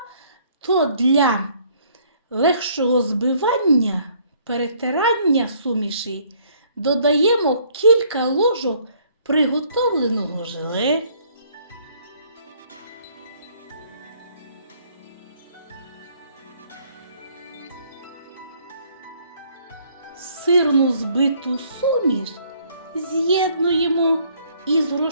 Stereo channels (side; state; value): both; inverted; correlation -0.63